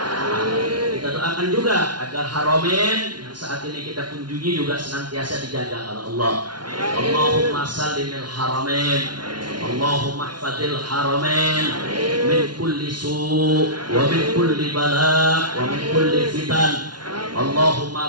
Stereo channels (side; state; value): left; late; 0.70 ms